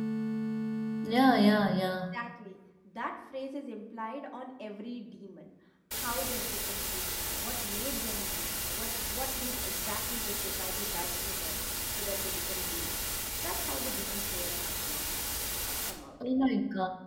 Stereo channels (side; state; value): both; identical; correlation 1.00